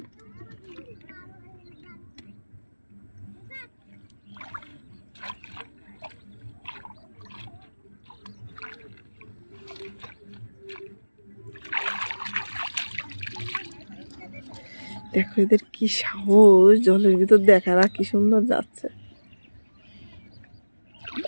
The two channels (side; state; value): both; inverted; correlation -1.00